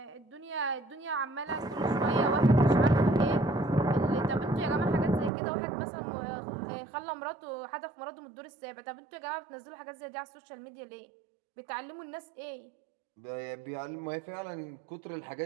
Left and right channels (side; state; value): left; drops out; at 5.3 s